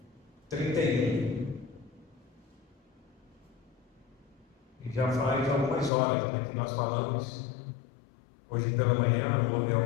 31. E já faz algumas horas, né, que nós falamos. Hoje pela manhã houve a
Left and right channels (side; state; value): right; drops out; at 5.9 s